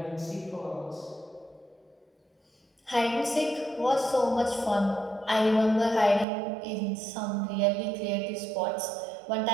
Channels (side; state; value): left; drops out; at 6.2 s